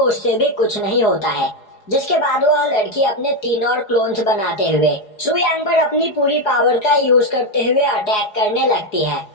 भी कुछ नहीं होता है। जिसके बाद वह लड़की अपने 3 और क्लोन्स बनाते हुए सुयांग पर अपनी पूरी पावर का यूज करते हुए अटैक करने लगती है।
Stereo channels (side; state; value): right; late; 4.8 ms